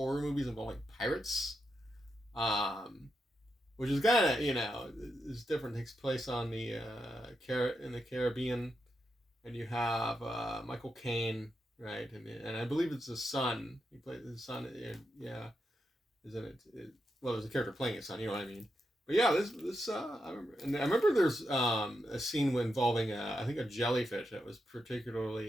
movies involving pirates, which is kind of is different. It takes place on in the Caribbean. And you have Michael Caine, right? And I believe it's his son. He plays his son. Yeah, isn't it? Well, there's a character playing his son. You know what I mean? But yeah, this I remember there's a scene involving I think a jellyfish that was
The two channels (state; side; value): normal; both; correlation 0.85